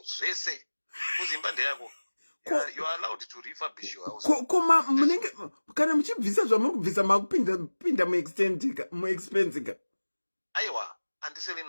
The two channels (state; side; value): inverted; both; correlation -1.00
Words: zvese. Kuzimba ndeyako. You are allowed to refurbish your house. Koma munenge kana muchibvisa zvamuri kubvisa makupinda mu expense. Aiwa,